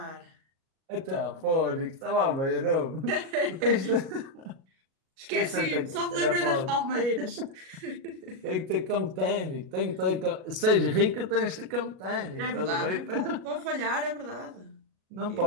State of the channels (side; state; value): left; late; 37 ms